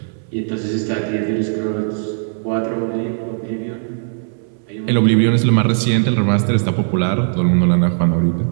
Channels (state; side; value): silent; left; 60 dB below the other